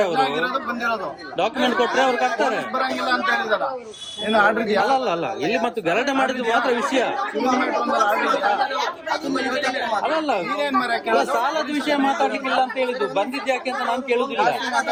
ಅವರು. ಬಂದಿರೋದು ಡಾಕ್ಯುಮೆಂಟ್ ಕೊಟ್ರೆ ಅವ್ರು ಕಟ್ತಾರೆ. ಬರಂಗಿಲ್ಲ ಅಂತ ಹೇಳಿದಾರ. ಏನು ಆರ್ಡರ್ ಇದೆಯಾ? ಅಲ್ಲ ಅಲ್ಲ, ಇಲ್ಲಿ ಮತ್ತು ಗಲಾಟೆ ಮಾಡಿದ್ದು ಮಾತ್ರ ವಿಷಯ. ಅಲ್ಲ ಸಾಲದ ವಿಷಯ ಮಾತಾಡ್ಲಿಕ್ಕಿಲ್ಲ ಅಂತ ಹೇಳಿದ್ದು. ಬಂದಿದ್ದು ಯಾಕೆ ಅಂತ ನಾನು ಕೇಳುದಿಲ್ಲ.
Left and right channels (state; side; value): identical; both; correlation 1.00